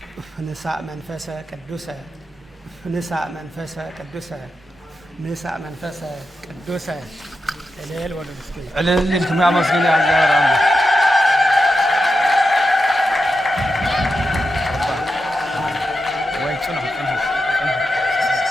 ንሳእ መንፈሰ ቅዱሰ ንሳእ መንፈሰ ቅዱሰ ንሳእ መንፈሰ ቅዱሰ እልል ወለድ እስኪ እልል እንትም ያመስግን ያዛራም ወይ ጽኑ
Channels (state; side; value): normal; both; correlation 0.88